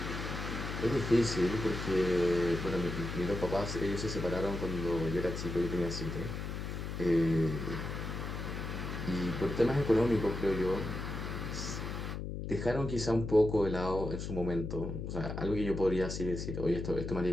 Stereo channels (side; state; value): left; noise; hum, 5 dB below the sound